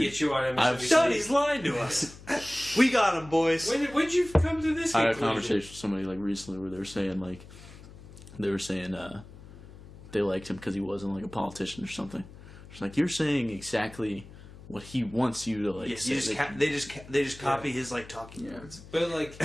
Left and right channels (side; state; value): left; noise; hum, 18 dB below the sound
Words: get you on I've MSNBC. Sonny's lying to us. We got him, boys. When'd you come to this I had a conclusion? conversation with somebody like recently where they were saying they liked him because he wasn't like a politician or something. It's like you're saying exactly what he wants you to like. Yeah, say. they just copy his like talking points. But like,